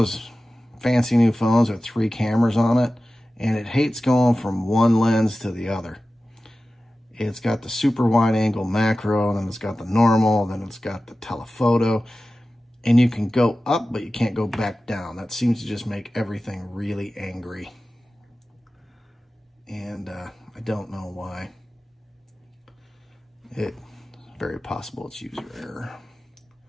fancy new phones with 3 cameras on it, and it hates going from one lens to the other. It's got the super wide angle macro, then it's got the normal, then it's got the telephoto, and you can go up, but you can't go back down. That seems to just make everything really angry. And I don't know why. It's very possible it's user error.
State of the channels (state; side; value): normal; both; correlation 0.95